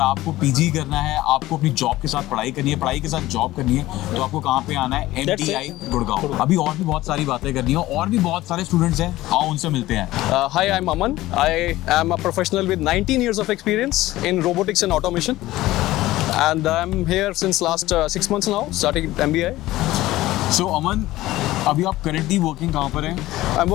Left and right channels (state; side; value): quieter; right; 16.7 dB